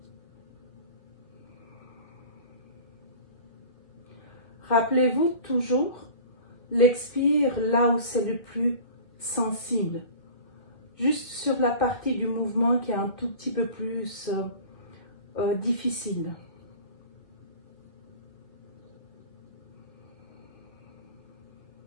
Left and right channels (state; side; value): late; right; 1.7 ms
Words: Rappelez-vous toujours l'expire là où c'est le plus sensible. Juste sur la partie du mouvement qui est un tout petit peu plus difficile.